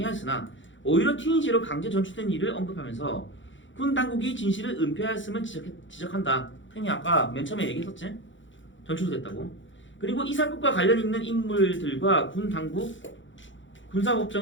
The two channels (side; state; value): right; late; 0.55 ms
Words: 오히려 튀니지로 강제 전출된 일을 언급하면서 군 당국이 진실을 은폐하였음을 지적한다. 형이 아까 맨 처음에 얘기했었지? 전출됐다고. 그리고 이 사건과 관련 있는 인물들과 군 당국